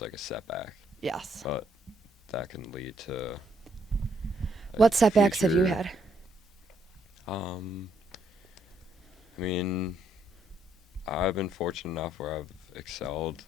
a setback. Yes. But that can lead to like, What setbacks have you future- had? I mean, I've been fortunate enough where I've excelled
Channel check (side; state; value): both; normal; correlation 0.72